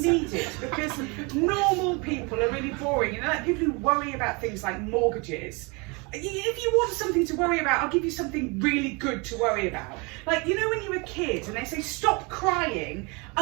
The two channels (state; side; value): quieter; left; 29.2 dB